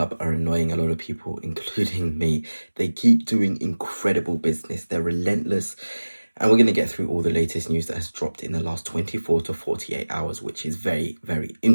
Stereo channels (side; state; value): both; inverted; correlation -1.00